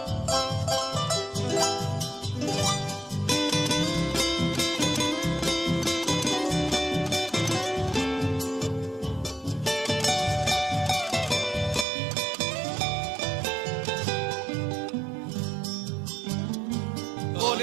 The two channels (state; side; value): drops out; left; at 11.9 s